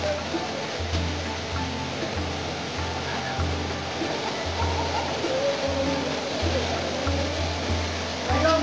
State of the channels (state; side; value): identical; both; correlation 1.00